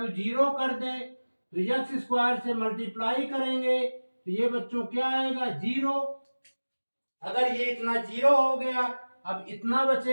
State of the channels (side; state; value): both; inverted; correlation -1.00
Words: 0 कर दे तो x² से मल्टीप्लाई करेंगे तो ये बच्चों क्या आएगा 0। अगर ये इतना 0 हो गया, अब इतना